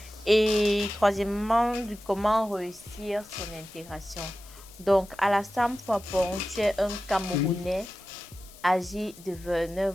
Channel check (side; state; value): left; noise; hiss, 21 dB below the sound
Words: Et troisièmement, de comment réussir son intégration. Donc, Alassane Fapon, tu es un Camerounais âgé de